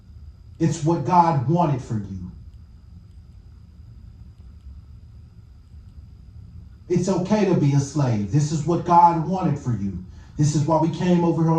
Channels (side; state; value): both; identical; correlation 1.00